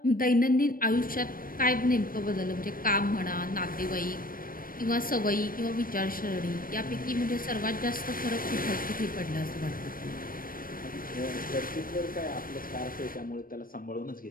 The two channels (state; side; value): late; right; 0.41 ms